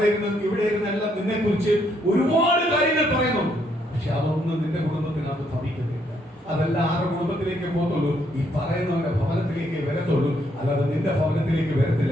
ഇരുന്ന് ഇവിടെ ഇരുന്നെല്ലാം നിന്നെ കുറിച്ച് ഒരുപാട് കാര്യങ്ങൾ പറയുന്നുണ്ട്. പക്ഷെ അതൊന്നും നിന്റെ കുടുംബത്തിനകത്ത് ഭവിക്കത്തില്ല. അതെല്ലാം ആരുടെ കുടുംബത്തിലേക്ക് പോകത്തുള്ളൂ? ഈ പറയുന്നവന്റെ ഭവനത്തിലേക്ക് വരത്തുള്ളൂ, അല്ലാതെ നിന്റെ ഭവനത്തിലേക്ക് വരത്തില്ല.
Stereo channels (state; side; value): normal; both; correlation 0.72